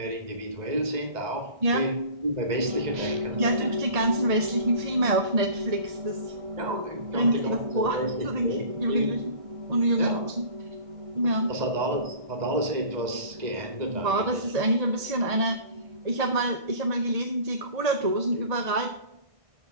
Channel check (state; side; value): late; left; 1.6 ms